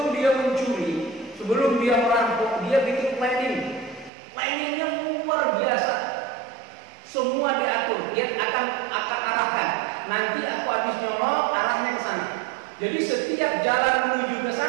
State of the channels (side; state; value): left; drops out; at 4.1 s